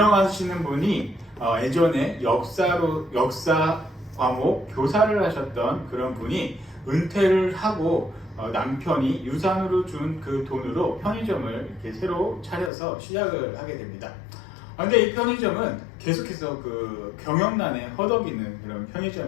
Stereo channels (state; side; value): drops out; right; at 12.7 s